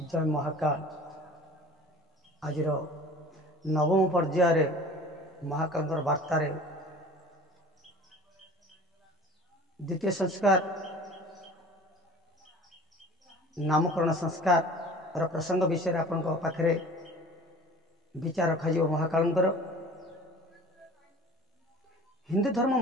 जय महाकाल। आज नवम पर्यायर महाकाल वार्तार द्वितीय संस्कार नामकरण संस्कार प्रसंग विषय आपण पाखे विचार रखा महाकाल। हिंदू धर्म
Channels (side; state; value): both; normal; correlation 0.44